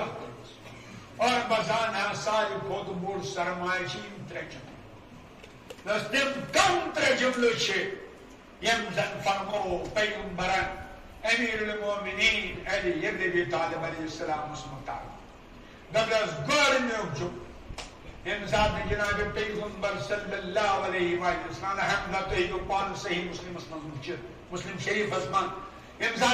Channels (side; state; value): both; identical; correlation 1.00